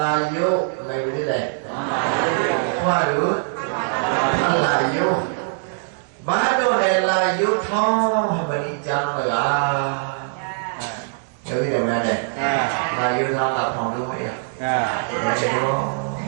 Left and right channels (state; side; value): silent; left; digital silence